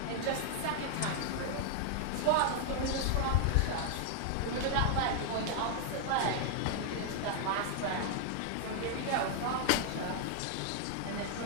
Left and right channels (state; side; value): different; both; correlation 0.00